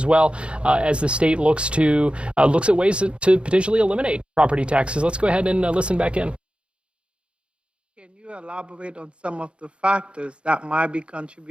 well, as the state looks at ways to potentially eliminate property taxes. Let's go ahead and listen back in. Can you elaborate on some of the factors that might be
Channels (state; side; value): late; left; 0.057 ms